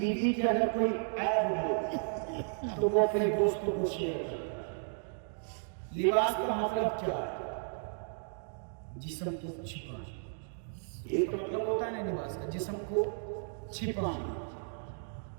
کے اندر کوئی عیب ہو تو وہ اپنے دوستوں کو شیئر کرتا ہے۔ لباس کا مطلب کیا ہے؟ جسم کو چھپانا، یہ تو مطلب ہوتا ہے نا لباس کا، جسم کو چھپانا۔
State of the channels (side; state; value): left; silent; digital silence